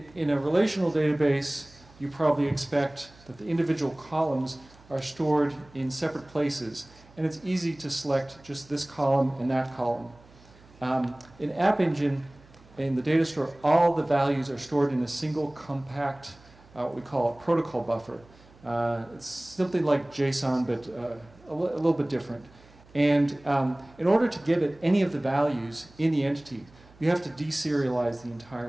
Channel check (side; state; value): right; noise; hum, 26 dB below the sound